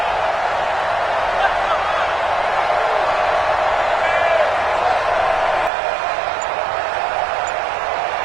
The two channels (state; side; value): drops out; left; at 5.7 s